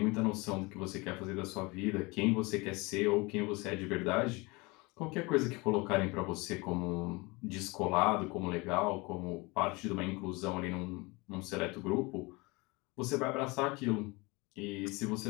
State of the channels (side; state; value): right; quieter; 25.5 dB